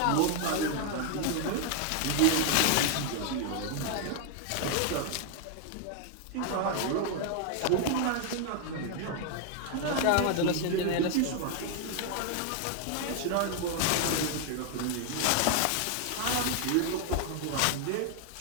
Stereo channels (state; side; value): different; both; correlation 0.00